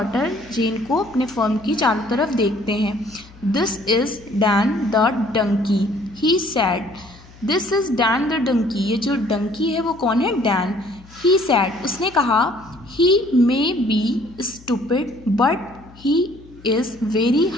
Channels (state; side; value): noise; left; hum, 23 dB below the sound